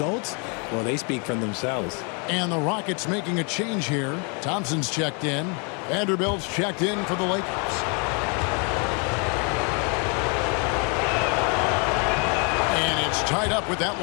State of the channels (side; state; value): right; quieter; 35.5 dB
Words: well, they speak for themselves. And the Rockets making a change here. Thompson's checked in. Vanderbilt's checked in for the Lakers. And it's tied up with that